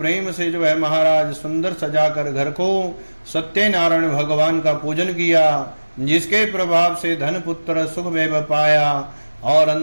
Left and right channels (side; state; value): both; inverted; correlation -1.00